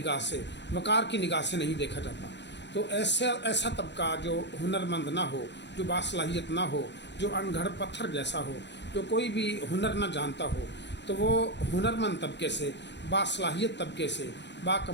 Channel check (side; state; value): right; late; 0.51 ms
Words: سے، وقار کی نگاہ سے نہیں دیکھا جاتا۔ تو ایسا طبقہ جو ہنرمند نہ ہو، جو باصلاحیت نہ ہو، جو ان گھڑ پتھر جیسا ہو، جو کوئی بھی ہنر نہ جانتا ہو، تو وہ ہنرمند طبقے سے، باصلاحیت طبقے سے، با